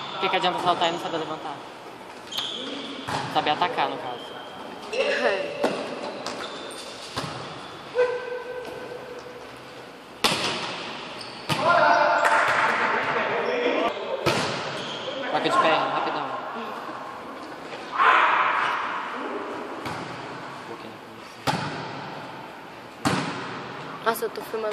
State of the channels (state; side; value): identical; both; correlation 1.00